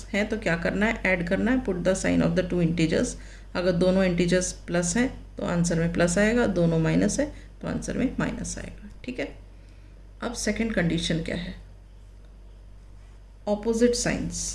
है तो क्या करना है, ऐड करना है. Put the sign of the two integers. अगर दोनों इंटीजर्स प्लस हैं तो आंसर में प्लस आएगा, दोनों माइनस है तो आंसर में माइनस आएगा, ठीक है. अब सेकंड कंडीशन क्या है, opposite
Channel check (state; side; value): identical; both; correlation 1.00